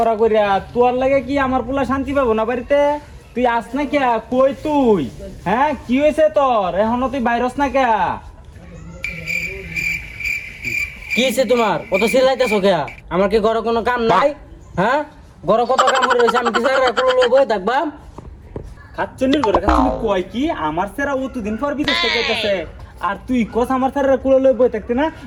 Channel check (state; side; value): identical; both; correlation 1.00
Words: করিয়া, তোর লাগে কি আমার পোলা শান্তি পাবো না বাড়িতে? তুই আস না কে? কই তুই? হ্যাঁ কি হয়েছে তোর? এখনো তুই বাইরস না কে? কি হয়েছে তোমার? কত চিল্লাইতেছো কে? আমার কি ঘরে কোনো কাম নাই? হ্যাঁ, ঘরে কত কাম করে রয়েছে, আমি কি স্যার বই থাকবা? খাচ্চন্নির ঘরে খাচ্চন্নি কয় কি আমার সেরা অতদিন পর বিদেশ থেকে আইতাছে, আর তুই কস আমার স্যারের কুলো লই বই থাকতে না?